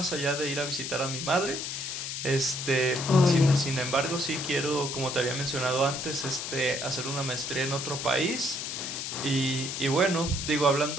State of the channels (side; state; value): left; noise; hiss, 5 dB below the sound